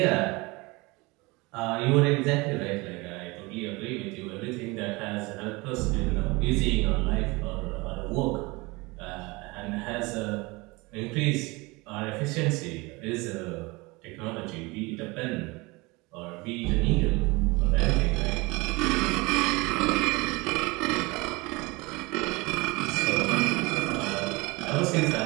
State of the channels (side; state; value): left; quieter; 24.5 dB